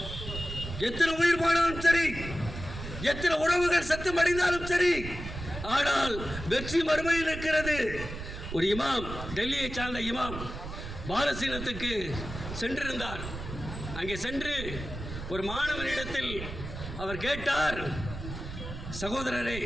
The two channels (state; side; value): noise; right; rumble, 8 dB below the sound